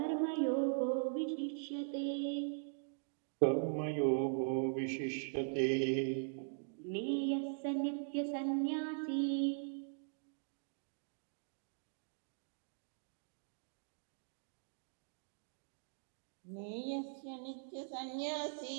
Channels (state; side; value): silent; left; digital silence